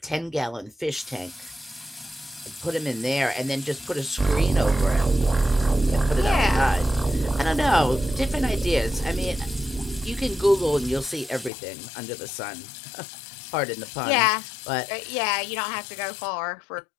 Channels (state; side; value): drops out; right; at 11.5 s